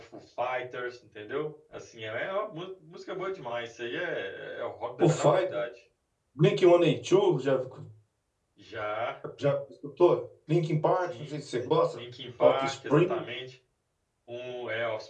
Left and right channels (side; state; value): both; identical; correlation 1.00